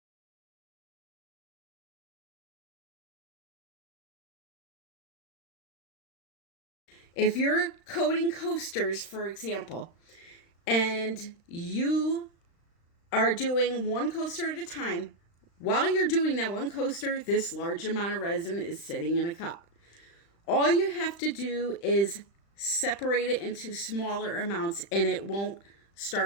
If you're coating coasters, for example, and you are doing one coaster at a time, while you're doing that one coaster, this large amount of resin is sitting in a cup. All you have to do is separate it into smaller amounts and it won't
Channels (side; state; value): right; late; 35 ms